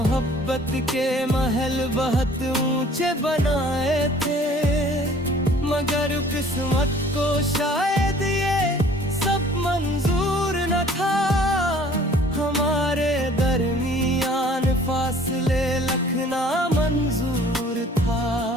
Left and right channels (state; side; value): normal; both; correlation 0.52